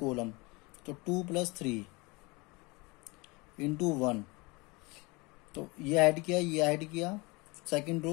तो 2 + 3 इंटू 1, तो ये ऐड किया, ये ऐड किया, सेकंड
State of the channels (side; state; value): right; quieter; 25.8 dB